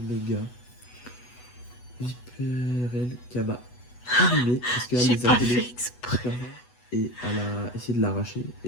Mega Viperel Kama animé parce qu'elle J'ai les a pas appelés fait exprès. et elle a essayé de l'arracher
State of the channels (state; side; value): late; right; 8.1 ms